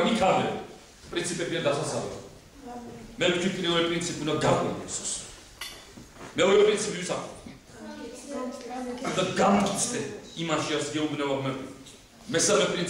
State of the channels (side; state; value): both; identical; correlation 1.00